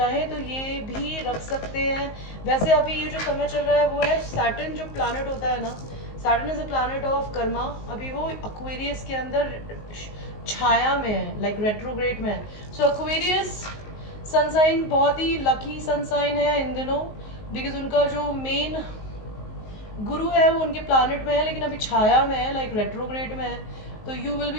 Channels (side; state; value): right; late; 19 ms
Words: तो ये भी रख सकते हैं. वैसे अभी ये जो समय चल रहा है वो है सैटर्न जो प्लैनेट होता है ना, Saturn is a planet of Karma. अभी वो एक्वेरियस के अंदर छाया में है, लाइक रेट्रोग्रेड में है. सो एक्वेरियस सनसाइन बहुत ही लकी सनसाइन है इन दिनों बिकॉज उनका जो मेन गुरु है वो उनके प्लैनेट में है लेकिन अभी छाया में है, लाइक रेट्रोग्रेड में है. तो you will